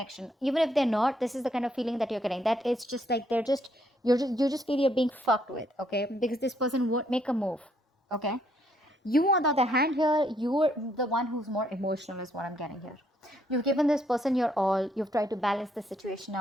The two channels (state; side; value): normal; both; correlation 0.71